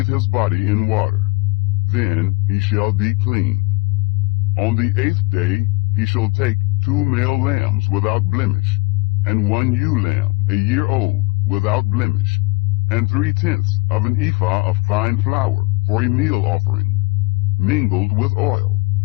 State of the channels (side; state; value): right; quieter; 26.9 dB